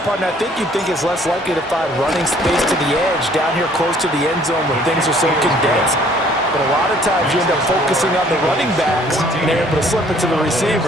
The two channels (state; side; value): normal; both; correlation 0.59